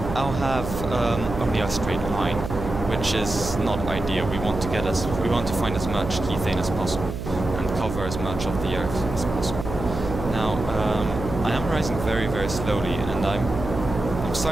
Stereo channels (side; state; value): right; noise; hum, 7 dB below the sound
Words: I'll have only a straight line, which is not ideal. We want to find as much kethane as possible and cover as much of the Earth as possible. Now, I am rising very, very slowly, and I'm